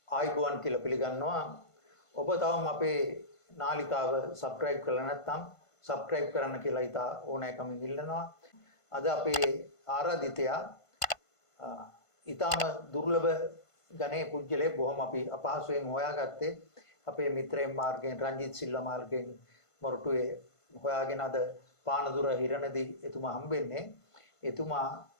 ආයිබුවන් කියලා පිළිගන්නවා. ඔබ තවම අපේ නාලිකාව සබ්ස්ක්‍රයිබ් කරලා නැත්නම් සබ්ස්ක්‍රයිබ් කරන්න කියලා ඉතා ඕනෑකමින් ඉල්ලනවා. අද අපේ ආරාධිතයා ඊටම දුර්ලභ ගණේ පුජ්‍යලේ බොහොම අපි අපහසුයෙන් හොයාගත්තේ අපේ මිත්‍රයන් මාර්ගයෙන් රංජිත් සිල්වා මාර්ගයෙන් මොරටුවේ හොයාගෙන අද පානදුර හිරණදී එතුමා හම්බෙන්නේ. එතුමා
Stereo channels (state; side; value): late; right; 1.5 ms